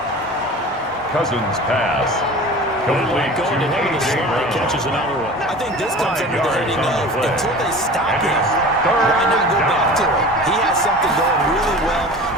Cousins pass. Complete going to him in the slot. Catches another one. I think this comes under the heading of until they stop him, why not go back to it? He has something going really well.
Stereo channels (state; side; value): normal; both; correlation 0.38